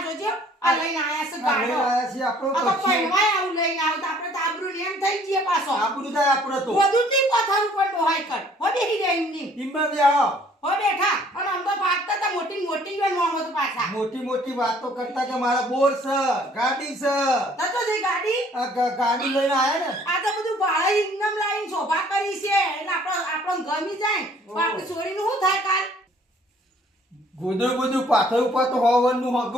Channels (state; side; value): normal; both; correlation 0.58